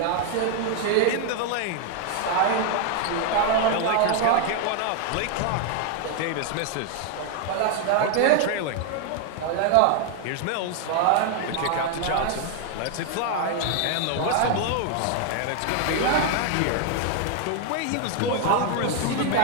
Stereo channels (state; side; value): different; both; correlation 0.00